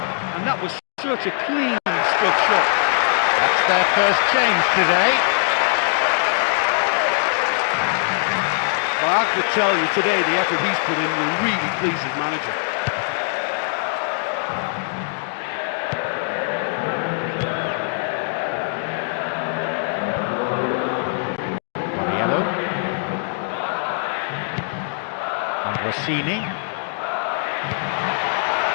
and that was such a cleanly struck shot. That's their first change today. Well, I have to tell you, today the effort he's put in will really please his manager. Borriello. And Rossini.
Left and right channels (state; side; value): silent; right; digital silence